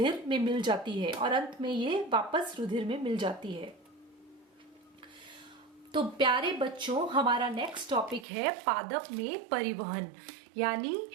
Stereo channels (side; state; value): left; drops out; at 8.2 s